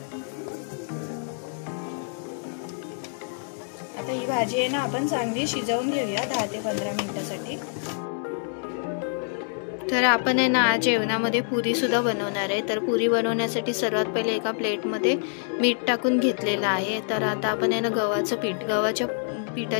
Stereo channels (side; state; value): right; silent; 61 dB below the other